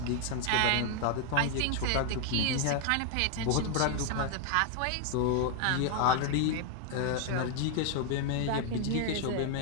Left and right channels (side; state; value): both; different; correlation 0.00